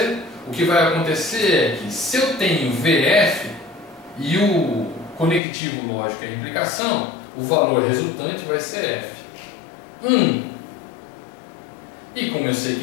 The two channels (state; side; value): drops out; right; at 5.4 s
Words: O que vai acontecer é que se eu tenho VF e o conectivo lógico é a implicação, o valor resultante vai ser F. 1. E como eu sei